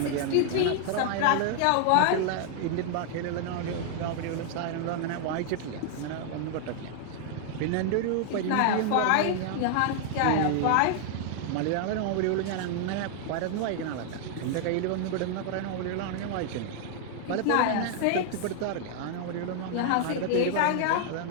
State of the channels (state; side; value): different; both; correlation 0.00